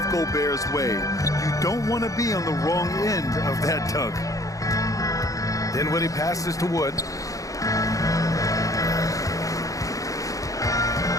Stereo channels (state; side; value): late; right; 0.16 ms